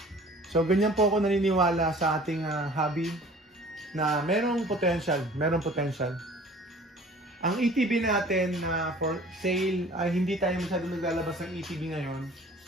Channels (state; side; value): normal; both; correlation 0.48